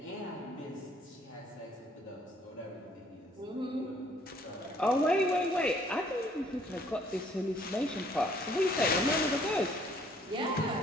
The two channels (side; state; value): both; normal; correlation 0.62